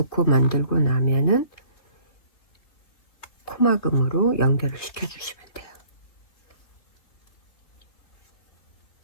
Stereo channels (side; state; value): right; late; 3.4 ms